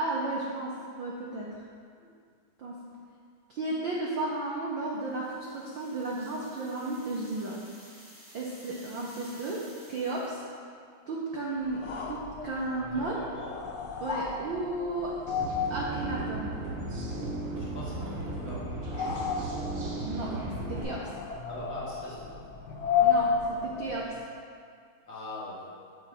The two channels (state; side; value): late; left; 4.2 ms